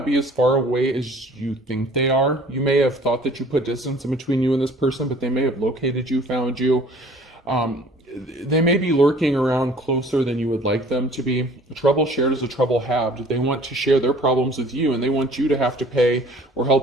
be as far away as you think they are. You may have thought that you put distance in between you and this person, but they may have located you, found you. They may be lurking around closer than you would like them to be. A trouble shared is a trouble halved. They want to share their problems with you, and they want you to have to pay or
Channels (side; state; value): both; normal; correlation 0.52